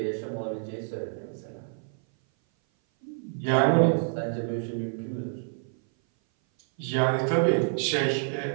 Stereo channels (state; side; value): silent; left; 57 dB below the other